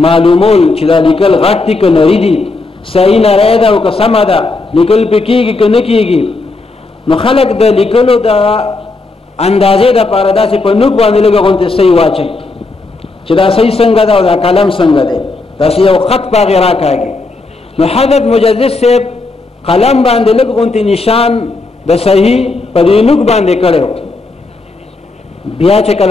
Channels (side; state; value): right; quieter; 3.4 dB